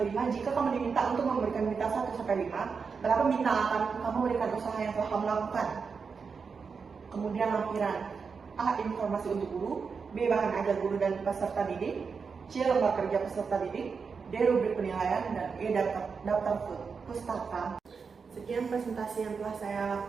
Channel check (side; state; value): left; quieter; 5.4 dB